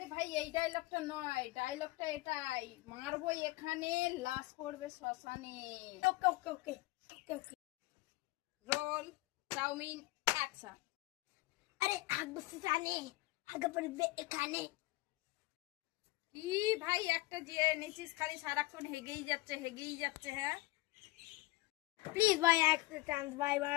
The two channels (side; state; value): right; quieter; 20.2 dB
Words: ভাই এই ডায়লগটা নয়, ডায়লগটা এটাই, মারবো এখানে লাশ পড়বে শ্মশানে। Okay okay okay okay okay. Roll, chowmein, action. আরে হাগবো শ্মশানে, হাগা পড়বে এখানে। কি ভাই একটা যে নিচিস খালি সারাক্ষণ হেগেই যাচ্ছে হ্যাঁ। প্লিজ ভাই একটা চান্স ভাই